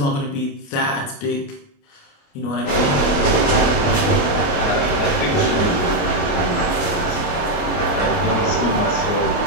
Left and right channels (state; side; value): late; right; 28 ms